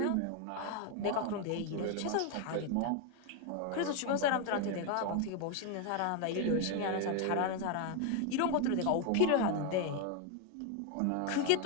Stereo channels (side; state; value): both; different; correlation 0.01